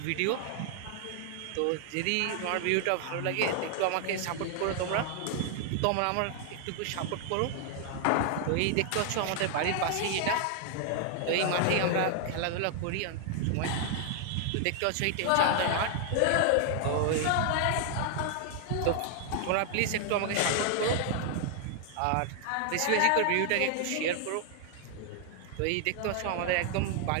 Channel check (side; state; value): both; different; correlation 0.00